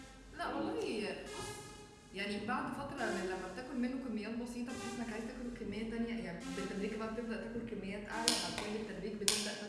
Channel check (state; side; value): identical; both; correlation 1.00